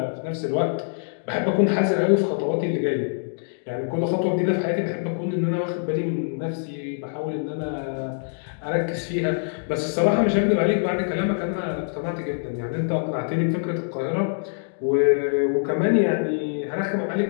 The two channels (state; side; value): silent; right; digital silence